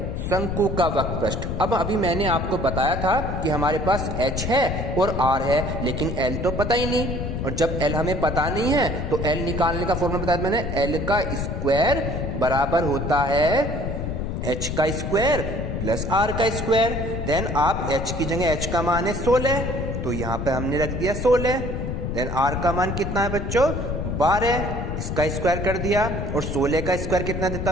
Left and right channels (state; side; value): noise; left; rumble, 3 dB below the sound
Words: शंकु का वक्र पृष्ठ। अब अभी मैंने आपको बताया था कि हमारे पास h है और r है, लेकिन l तो पता ही नहीं, और जब l हमें पता नहीं है तो l निकालने का फॉर्मूला बताया मैंने, l का स्क्वायर बराबर होता है h का स्क्वायर प्लस r का स्क्वायर। देन आप h की जगह h का मान है 16, तो यहाँ पे हमने रख दिया 16। देन r का मान कितना है बच्चों 12, इसका स्क्वायर कर दिया, और 16 का स्क्वायर कितना देता